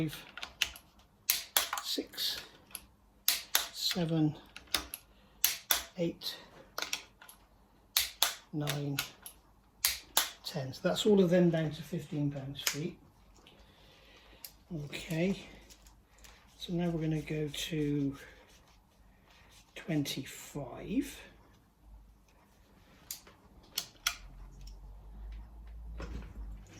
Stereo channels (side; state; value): both; identical; correlation 1.00